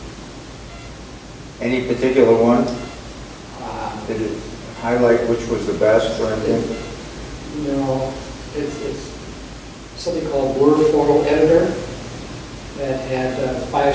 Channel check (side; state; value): both; identical; correlation 1.00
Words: Any particular one? Uh, Did it highlight which was the best or anything? It's something called Blur Photo Editor that had